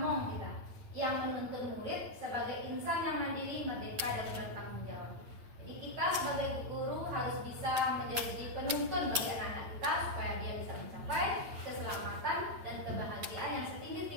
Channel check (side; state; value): left; late; 8.9 ms